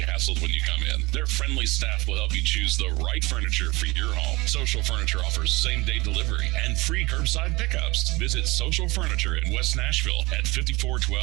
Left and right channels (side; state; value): left; quieter; 23.1 dB